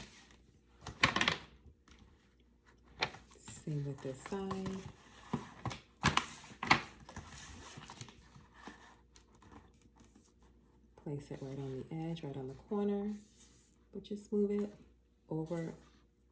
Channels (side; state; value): both; identical; correlation 1.00